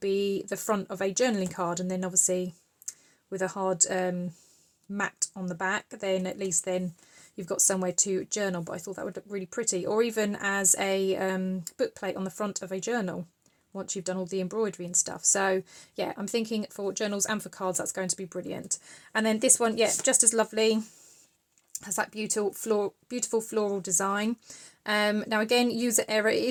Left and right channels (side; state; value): both; identical; correlation 1.00